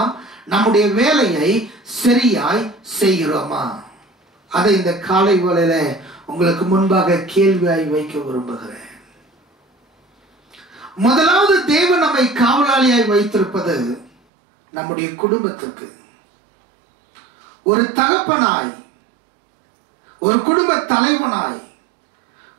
நம்முடைய வேலையை சரியாய் செய்கிறோமா? அதை இந்த காலை வேளையில உங்களுக்கு முன்பாக கேள்வியாய் வைக்க விரும்புகிறேன். முதலாவது, தேவன் நம்மை காவலாளியாய் வைத்திருப்பது நம்முடைய குடும்பத்திற்கு. ஒரு தகப்பனாய், ஒரு குடும்ப தலைவனாய்,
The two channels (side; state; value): left; drops out; at 14.1 s